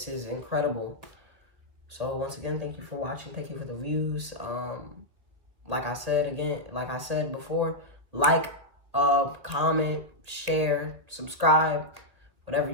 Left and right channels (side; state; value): left; late; 1.7 ms